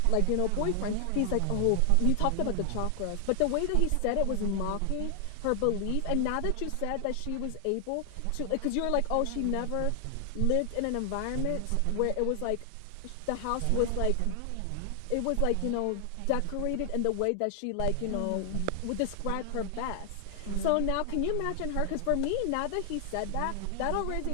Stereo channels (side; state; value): both; different; correlation 0.00